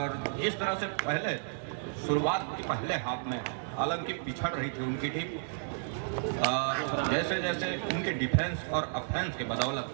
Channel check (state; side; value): silent; left; digital silence